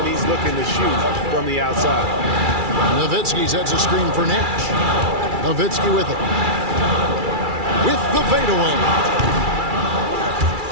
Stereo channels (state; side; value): late; left; 2.3 ms